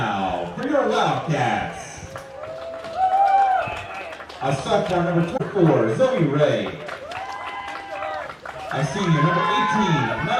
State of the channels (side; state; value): both; identical; correlation 1.00